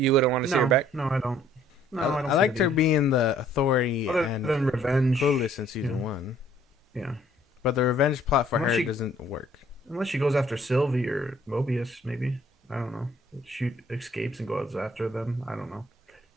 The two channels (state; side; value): normal; both; correlation 0.60